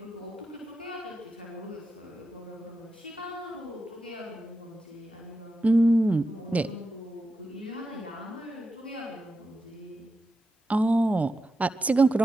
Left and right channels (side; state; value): both; normal; correlation 0.89